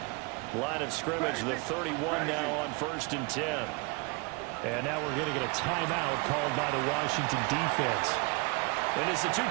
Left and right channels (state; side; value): quieter; left; 28.6 dB